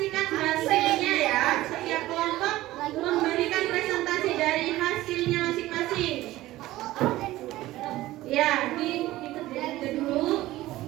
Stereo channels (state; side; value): quieter; left; 16.5 dB